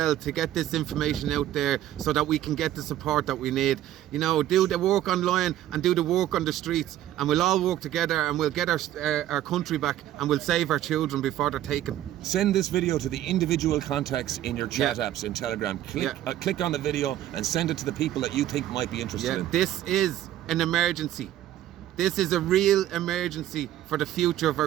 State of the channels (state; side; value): quieter; left; 12.9 dB